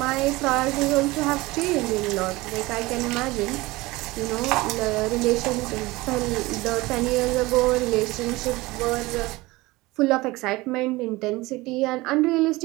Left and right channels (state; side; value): quieter; left; 20.8 dB